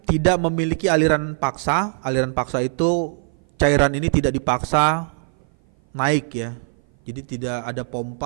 tidak memiliki aliran paksa. Aliran paksa itu cairan ini tidak dipaksa naik ya. Jadi tidak ada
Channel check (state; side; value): silent; left; 57 dB below the other